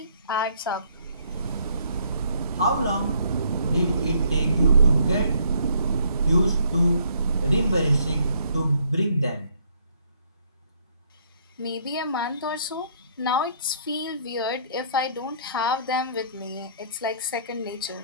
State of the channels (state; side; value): inverted; both; correlation -0.65